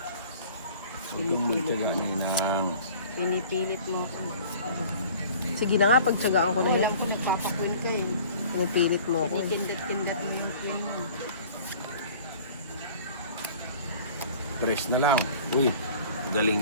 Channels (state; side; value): inverted; both; correlation -0.48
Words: Huwag kang magtyaga ninang. Pinipilit mo ako. Sige na nga, pagtsagaan ko na yan. Alam ko nagpapakwin ka eh. Pinipilit mo ako. Itindat-tindat mo yung kwin mo. Press na lang. Uy, galing